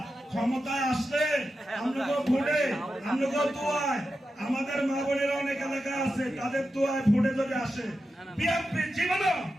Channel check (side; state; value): both; normal; correlation 0.90